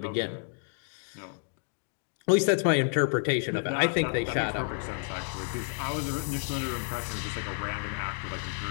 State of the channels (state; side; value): silent; right; 57 dB below the other